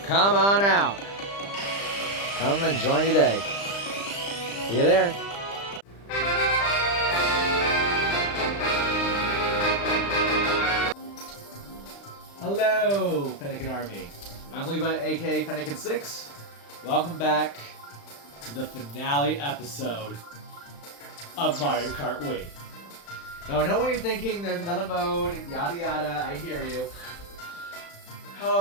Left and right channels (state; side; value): late; right; 35 ms